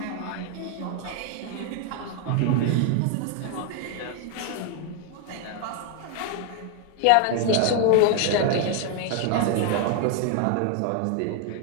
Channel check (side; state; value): both; different; correlation 0.01